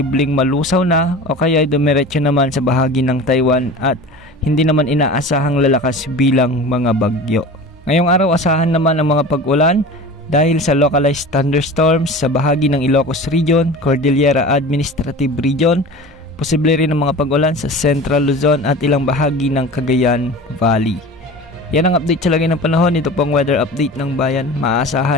malusaw na o kaya dumiretso naman sa bahagi ng Taiwan at hindi naman inaasahang lalakas bilang mga bagyo. Ngayong araw asahan naman ang mga pag-ulan dahil sa localized thunderstorms sa bahagi ng Ilocos Region, Cordillera Administrative Region, posible rin ang mga pag-ulan sa Central Luzon at ilang bahagi ng Cagayan Valley. Yan ang update sa lagay ng panahon. Ito pong weather update ng bayan,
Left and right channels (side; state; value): both; normal; correlation 0.35